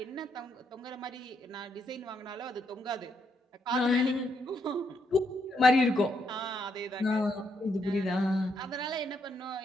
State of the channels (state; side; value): normal; both; correlation 0.76